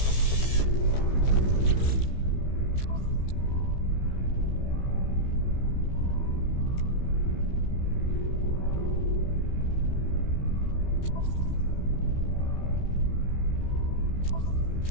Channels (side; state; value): right; late; 15 ms